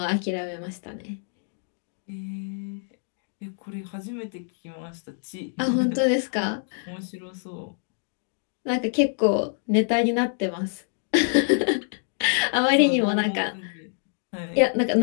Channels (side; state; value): right; silent; digital silence